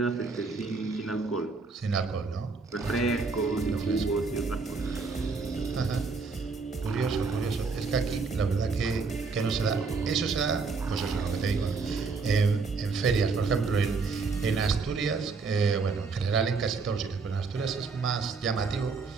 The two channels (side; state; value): left; quieter; 4.5 dB